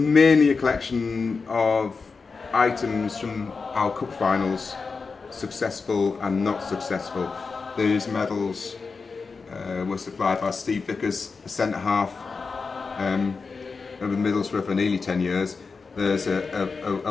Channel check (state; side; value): quieter; right; 4.7 dB